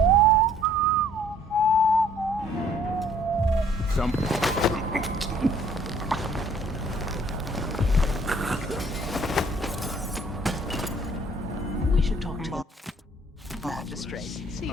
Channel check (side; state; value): both; normal; correlation 0.58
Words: We should talk to the magistrate. See if